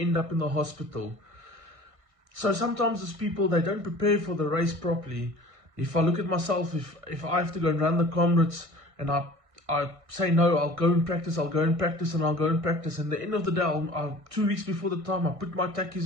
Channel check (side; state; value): left; late; 1.6 ms